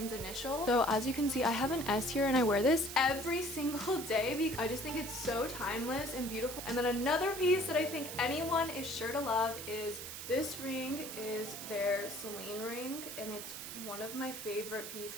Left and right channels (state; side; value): noise; right; hiss, 8 dB below the sound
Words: initial. So as you can see, I have an S here and I wear this every single day because I just think it's so timeless and beautiful. And then another piece that I think anyone is sure to love is this ring. Is their Celine ring, and it's one of my favorite